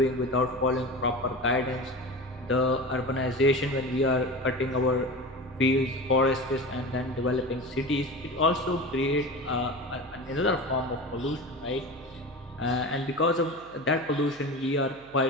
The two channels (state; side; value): noise; right; hum, 25 dB below the sound